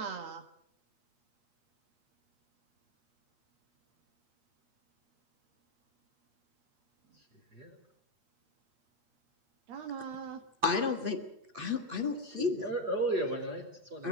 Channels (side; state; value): left; late; 8.5 ms